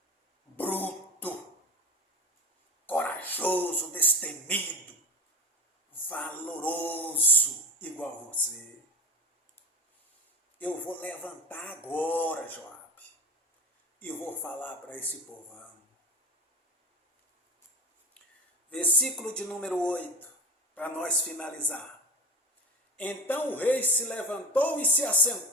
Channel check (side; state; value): both; normal; correlation 0.31